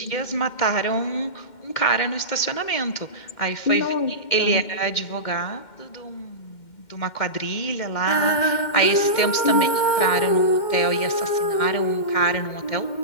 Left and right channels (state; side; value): late; right; 2.1 ms